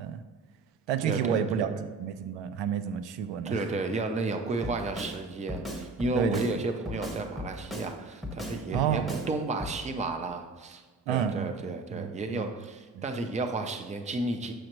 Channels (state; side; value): quieter; left; 4.1 dB